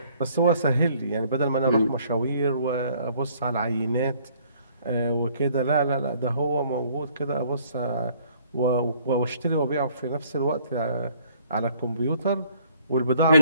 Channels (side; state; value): both; inverted; correlation -0.60